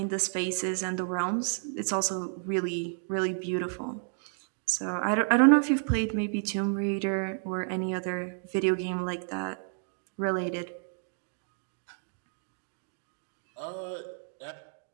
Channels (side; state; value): left; silent; digital silence